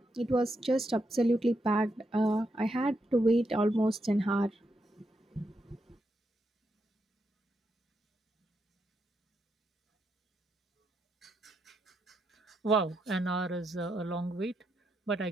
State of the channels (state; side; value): normal; both; correlation 0.82